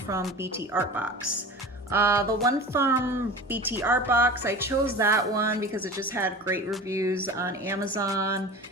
BT Art Box. The one from BT Art Box, I chose that one because it just had great reviews on Amazon.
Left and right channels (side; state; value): both; normal; correlation 0.35